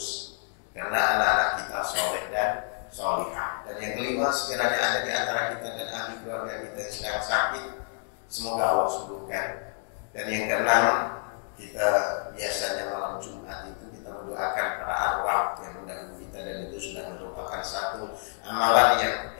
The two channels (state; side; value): silent; right; 57 dB below the other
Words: karena anak-anak kita soleh dan solihah. Dan yang kelima, sekiranya ada di antara kita dan ahli keluarga kita yang sedang sakit, semoga Allah sembuhkan. Dan yang keenam, kita biasanya malam Jumat itu kita mendoakan para arwah yang mendahului kita, dan itu sudah merupakan satu amalan yang